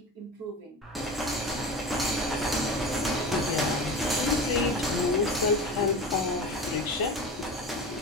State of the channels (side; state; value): both; normal; correlation 0.30